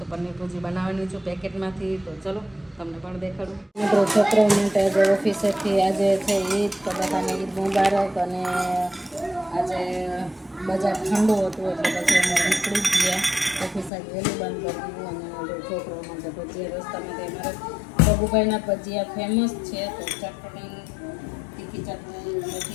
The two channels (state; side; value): drops out; right; at 13.9 s